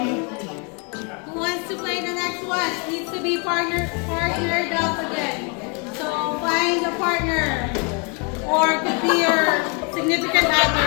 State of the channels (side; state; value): right; quieter; 34.7 dB